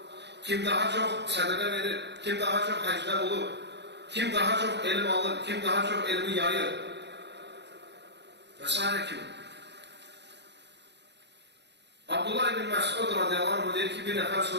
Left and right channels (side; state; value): left; late; 0.50 ms